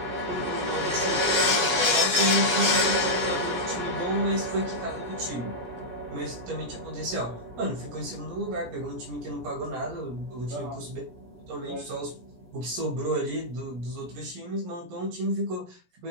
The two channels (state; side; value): late; left; 17 ms